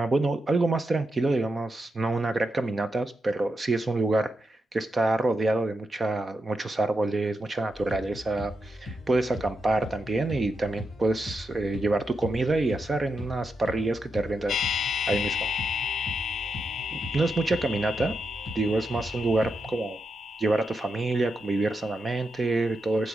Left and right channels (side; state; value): both; normal; correlation 0.86